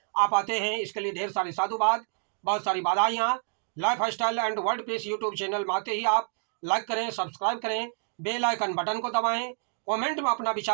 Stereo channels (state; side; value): silent; left; 59 dB below the other